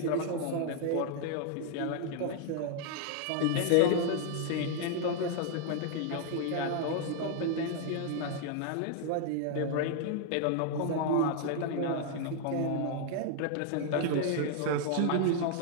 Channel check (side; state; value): both; different; correlation 0.00